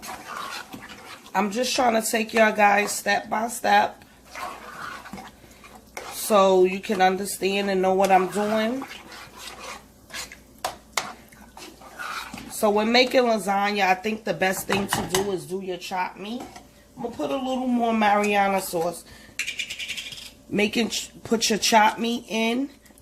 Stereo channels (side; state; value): both; identical; correlation 1.00